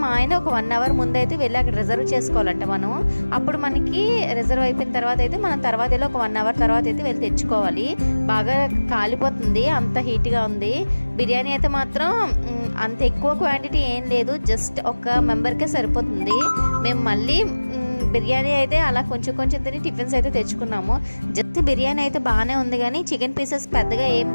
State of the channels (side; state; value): both; inverted; correlation -1.00